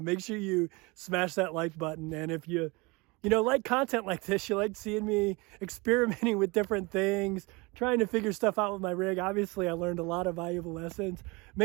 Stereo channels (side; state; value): left; quieter; 26.1 dB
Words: sure you smash that like button. And if you like content like this, you like seeing me experimenting with different things, trying to figure stuff out with my rig. Obviously, I learned a lot of valuable lessons.